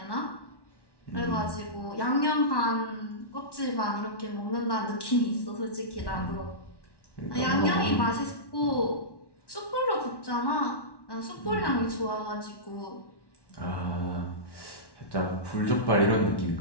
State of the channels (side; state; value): right; late; 1.1 ms